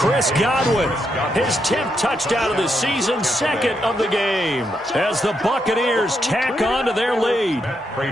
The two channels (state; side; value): normal; both; correlation 0.80